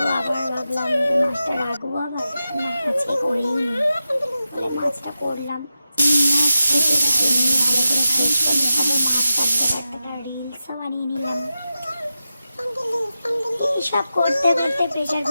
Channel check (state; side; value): inverted; both; correlation -0.90